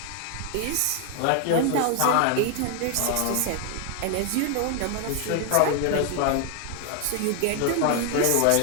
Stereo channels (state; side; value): different; both; correlation 0.01